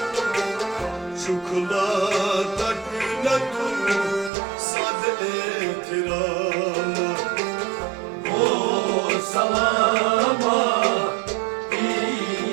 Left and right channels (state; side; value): drops out; left; at 4.3 s